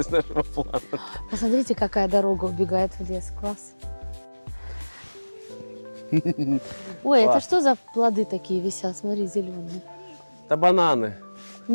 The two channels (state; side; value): inverted; both; correlation -1.00